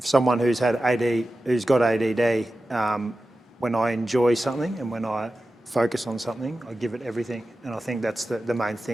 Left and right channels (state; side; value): normal; both; correlation 0.93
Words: who's got ADD, when I enjoy something and when I focus on something, I give it everything. And I think that's the main